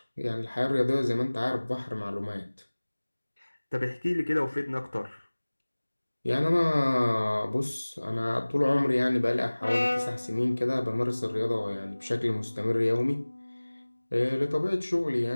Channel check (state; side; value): inverted; both; correlation -1.00